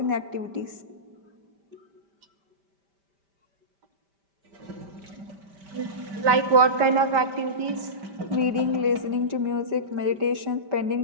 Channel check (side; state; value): left; late; 5.1 ms